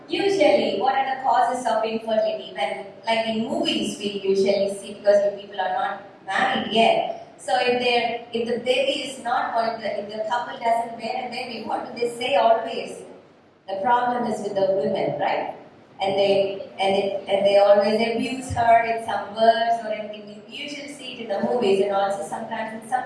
usually, what are the causes of infertility? When, like in movies, we usually see, because you people are not married yet. So if the baby is not going to, if the couple doesn't bear a baby, what do they say always? The problem is with the women, right? And they always abuse her in some words or anything. We usually see it in the movies and also sometimes in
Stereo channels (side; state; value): both; identical; correlation 1.00